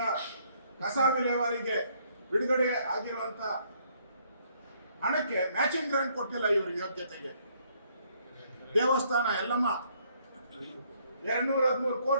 ಕಸ ವಿಲೇವಾರಿಗೆ ಬಿಡುಗಡೆ ಆಗಿರುವಂತ ಹಣಕ್ಕೆ ಮ್ಯಾಚಿಂಗ್ ಗ್ರಾಂಟ್ ಕೊಟ್ಟಿಲ್ಲ ಇವರು ಯೋಗ್ಯತೆಗೆ. ದೇವಸ್ಥಾನ ಎಲ್ಲಮ್ಮ 213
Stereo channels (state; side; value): inverted; both; correlation -0.67